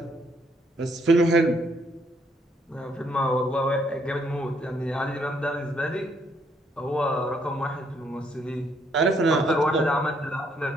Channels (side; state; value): both; normal; correlation 0.70